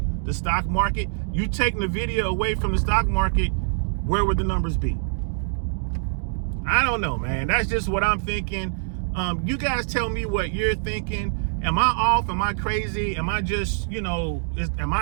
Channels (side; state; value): left; silent; digital silence